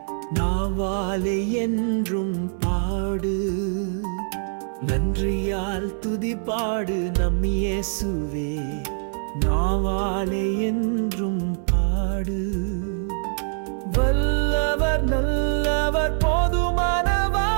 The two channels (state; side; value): silent; left; digital silence